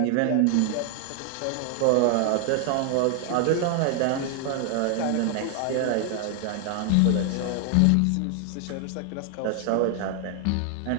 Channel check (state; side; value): different; both; correlation 0.00